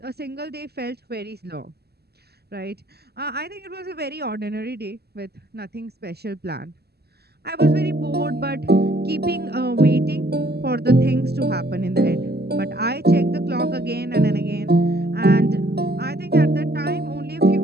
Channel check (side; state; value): left; late; 0.46 ms